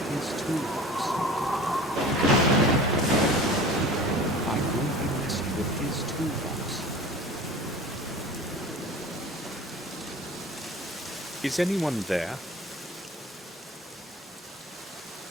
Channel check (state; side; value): normal; both; correlation 0.40